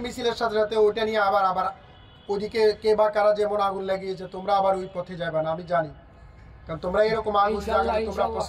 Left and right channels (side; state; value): both; identical; correlation 1.00